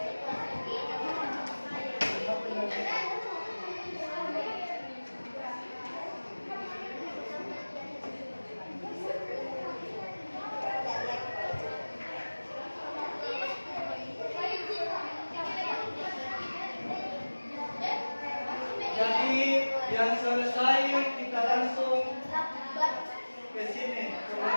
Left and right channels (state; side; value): inverted; both; correlation -1.00